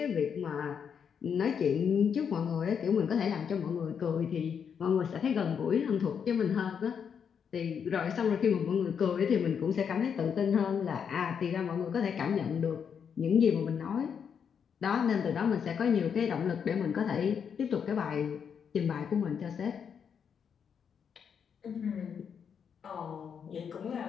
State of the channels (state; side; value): quieter; right; 7.2 dB